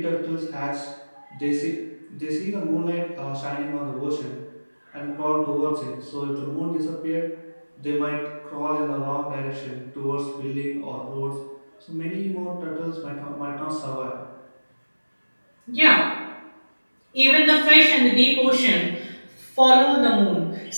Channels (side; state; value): both; inverted; correlation -1.00